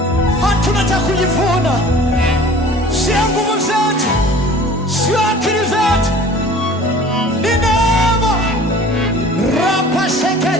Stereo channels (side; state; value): both; normal; correlation 0.46